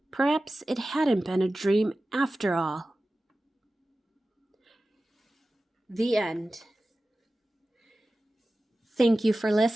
Perhaps it hadn't been a dream after all. The end. Thank you for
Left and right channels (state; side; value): normal; both; correlation 0.95